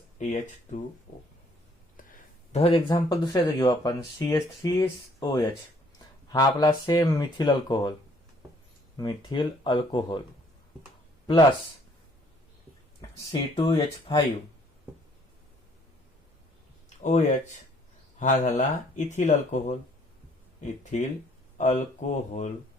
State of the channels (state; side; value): normal; both; correlation 0.62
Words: H2O. तर एक्झाम्पल दुसऱ्याचं घेऊ आपण. CH3OH हा आपला same methyl alcohol plus C2H5OH हा झाला ethyl alcohol